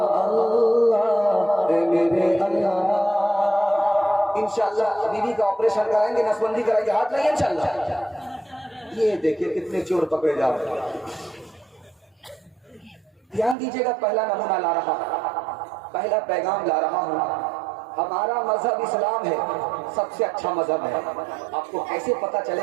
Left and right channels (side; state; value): left; drops out; at 13.6 s